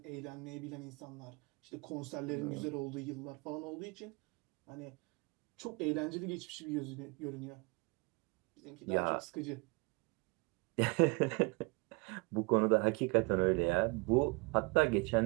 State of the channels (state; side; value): quieter; left; 28.6 dB